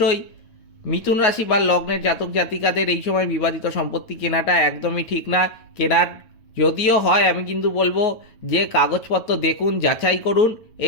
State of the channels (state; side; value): late; right; 9.0 ms